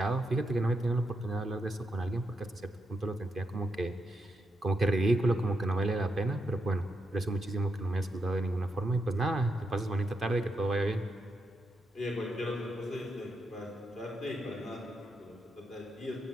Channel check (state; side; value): normal; both; correlation 0.83